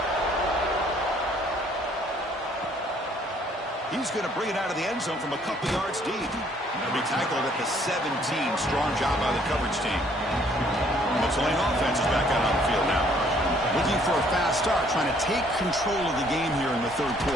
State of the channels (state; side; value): normal; both; correlation 0.62